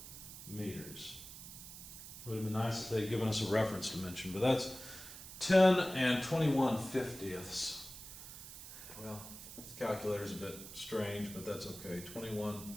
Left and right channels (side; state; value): right; noise; hiss, 13 dB below the sound